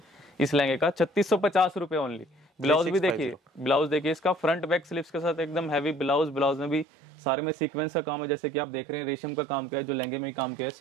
इस लहंगे का। 3650 रुपए ओनली। ब्लाउज भी देखिए, ब्लाउज देखिए इसका फ्रंट बैक स्लीव्स के साथ एकदम हैवी ब्लाउज। ब्लाउज में भी सारे में सीक्वेंस का काम है, जैसे कि आप देख रहे हैं रेशम का काम किया है, जो लहंगे में काम किया है,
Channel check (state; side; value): drops out; left; at 6.9 s